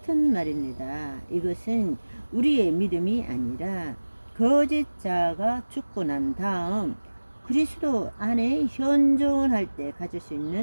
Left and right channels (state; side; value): inverted; both; correlation -1.00